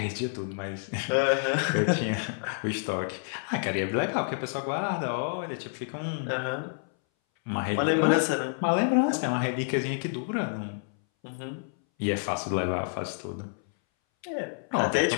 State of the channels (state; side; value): silent; right; 59 dB below the other